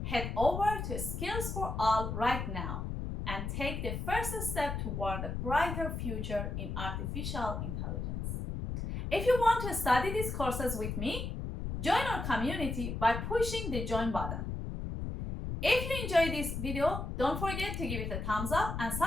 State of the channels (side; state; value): left; noise; rumble, 4 dB below the sound